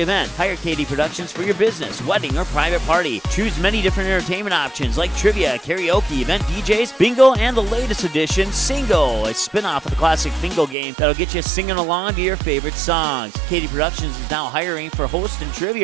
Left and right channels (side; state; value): left; drops out; at 10.8 s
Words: event. Hire KD Productions for your business, wedding, or private party. Choose many different entertainment options like trivia, karaoke, event DJs, bingo, and the latest edition, Singo, a spin-off of the classic bingo game that'll get you singing along to your favorite songs. KD Productions is now hiring for host and